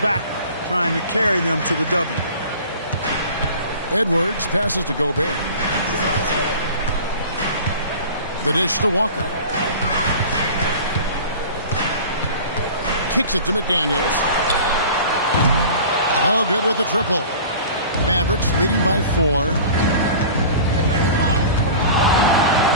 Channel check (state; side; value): inverted; both; correlation -0.40